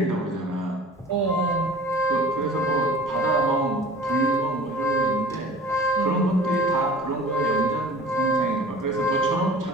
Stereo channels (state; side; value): normal; both; correlation 0.44